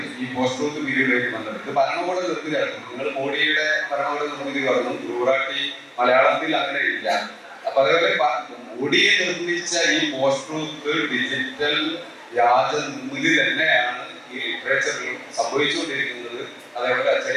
ഈ പോസ്റ്റ് ട്രൂത്ത് പീരീഡിലേക്ക് വന്നത്. ഇത് ഭരണകൂട നിർമ്മിതിയായിരുന്നു. നിങ്ങൾ മോഡിയുടെ ഭരണകൂട നിർമ്മിതി പറഞ്ഞു, ഗുറാട്ടി മലയാളത്തിൽ അങ്ങനെ ഇല്ല. അപ്പൊ അതേപോലെ മോഡിയെ നിർമ്മിച്ച ഈ പോസ്റ്റ് ട്രൂത്ത് ഡിജിറ്റൽ വ്യാജ നിർമ്മിതി തന്നെയാണ് ഈ ലിറ്ററേച്ചറിലും സംഭവിച്ചുകൊണ്ടിരിക്കുന്നത്. അതേപോലെ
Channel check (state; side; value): identical; both; correlation 1.00